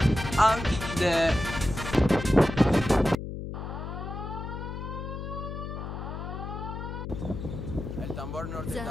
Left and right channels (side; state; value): left; noise; hum, 7 dB below the sound